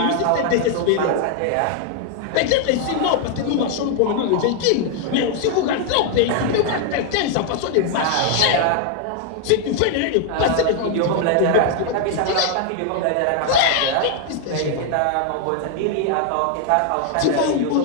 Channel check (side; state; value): both; different; correlation 0.00